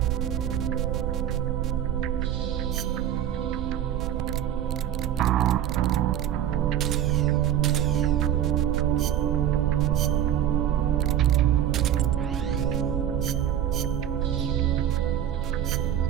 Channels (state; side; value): quieter; left; 10.8 dB